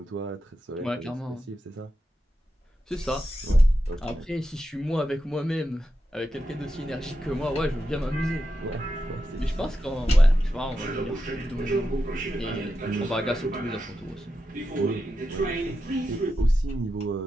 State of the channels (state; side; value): normal; both; correlation 0.88